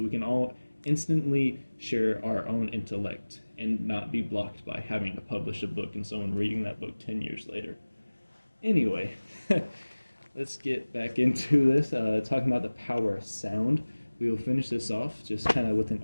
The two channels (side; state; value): both; inverted; correlation -1.00